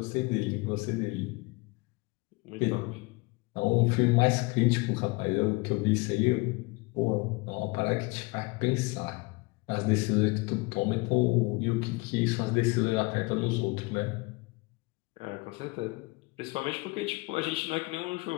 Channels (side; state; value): right; quieter; 25.8 dB